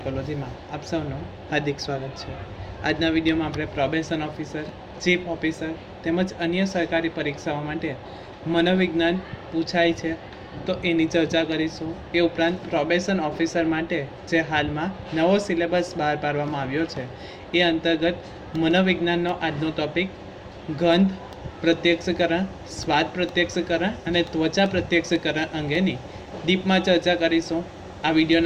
આપ સૌનું હાર્દિક સ્વાગત છે. આજના વિડીયોમાં આપણે પ્રોબેશન ઓફિસર, ચીફ ઓફિસર તેમજ અન્ય સરકારી પરીક્ષાઓ માટે મનોવિજ્ઞાન પૂછાય છે તો એની ચર્ચા કરીશું. એ ઉપરાંત પ્રોબેશન ઓફિસર માટે જે હાલમાં નવો સિલેબસ બહાર પાડવામાં આવ્યો છે એ અંતર્ગત મનોવિજ્ઞાનનો આજનો ટોપિક ગંધ પ્રત્યક્ષકરણ, સ્વાદ પ્રત્યક્ષકરણ અને ત્વચા પ્રત્યક્ષકરણ અંગેની ડીપમાં ચર્ચા કરીશું. આ વિડીયો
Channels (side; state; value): both; identical; correlation 1.00